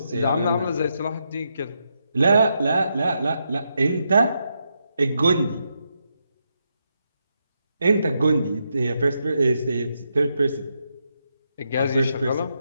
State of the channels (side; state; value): both; inverted; correlation -0.82